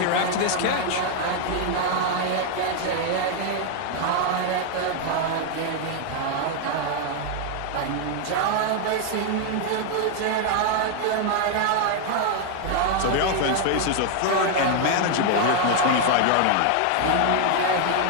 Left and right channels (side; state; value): both; different; correlation 0.00